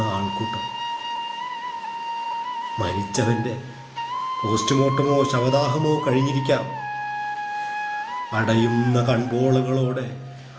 ആൾക്കൂട്ടം. മരിച്ചവന്റെ പോസ്റ്റ്മോർട്ടമോ ശവദാഹമോ കഴിഞ്ഞിരിക്കാം. അടയുന്ന കൺപോളകളോടെ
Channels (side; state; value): both; identical; correlation 1.00